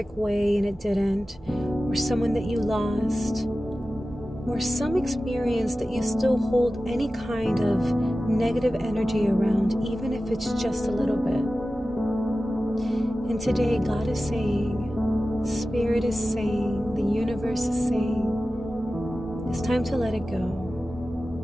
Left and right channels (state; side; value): noise; right; hum, 25 dB below the sound